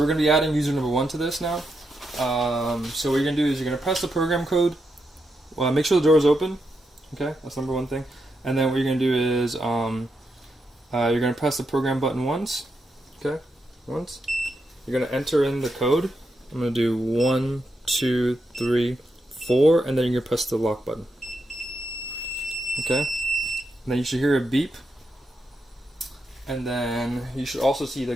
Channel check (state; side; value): normal; both; correlation 0.84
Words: we're gonna be adding user number 1 to this now. So what you're gonna do is you're gonna press the program code. Well, make sure the door is open. Okay, that's number 1 thing. And then what you're gonna do is you're gonna press the program button once. Okay, once. You're gonna enter in the code. I'm gonna do 1, 2, 3, 4, and then you're gonna press the lock button. Okay, and then you should hear a beep, and then you should also see the